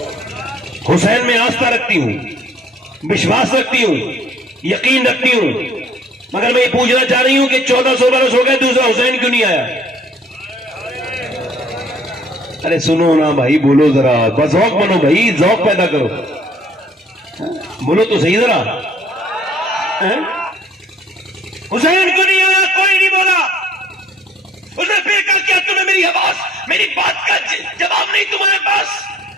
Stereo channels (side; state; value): both; normal; correlation 0.58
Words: حسین میں آستھا رکھتی ہوں، وشواس رکھتی ہوں، یقین رکھتی ہوں، مگر میں یہ پوچھنا چاہ رہی ہوں کہ 1400 برس ہو گئے دوسرا حسین کیوں نہیں آیا؟ ارے سنو نا بھائی، بولو ذرا، بس ذوق بنو بھائی، ذوق پیدا کرو، بولو تو صحیح ذرا، حسین کیوں نہیں آیا؟ کوئی نہیں بولا۔ اس نے پھر کہا کیا تمہیں میری آواز، میری بات کا جواب نہیں تمہارے پاس؟